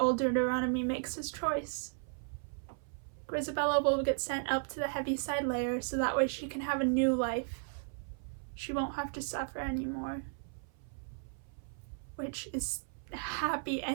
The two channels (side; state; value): left; silent; 54 dB below the other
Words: Deuteronomy makes his choice. Grizabella will get sent up to the Heaviside Layer so that way she can have a new life. She won't have to suffer anymore, which is a happy